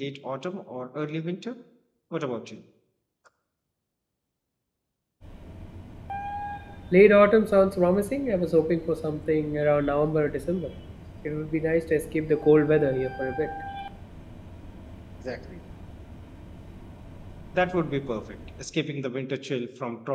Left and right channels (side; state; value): both; identical; correlation 1.00